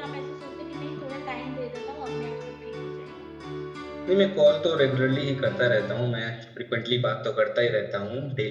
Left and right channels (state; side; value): identical; both; correlation 1.00